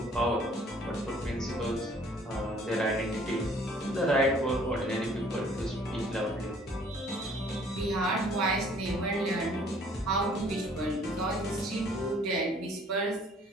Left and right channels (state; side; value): normal; both; correlation 0.57